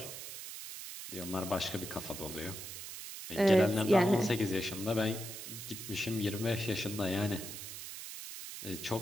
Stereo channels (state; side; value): noise; right; hiss, 9 dB below the sound